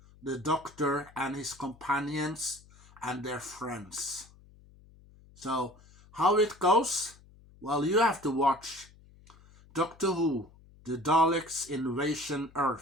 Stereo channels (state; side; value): noise; left; hum, 25 dB below the sound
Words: the Doctor and his companions and their friends. So, how it goes? Well, you have to watch Doctor Who, The Daleks Invasion